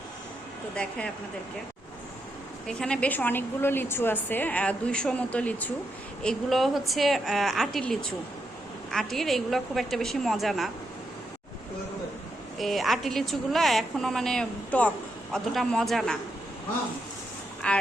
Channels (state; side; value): normal; both; correlation 0.82